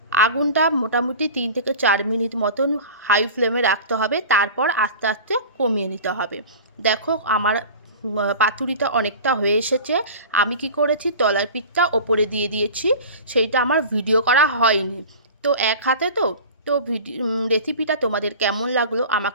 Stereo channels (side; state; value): both; inverted; correlation -0.36